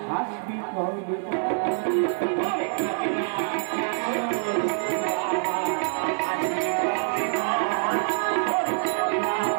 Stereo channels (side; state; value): left; silent; 61 dB below the other